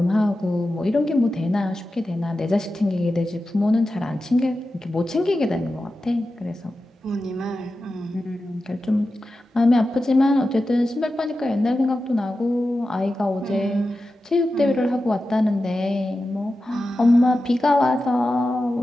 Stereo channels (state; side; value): normal; both; correlation 0.92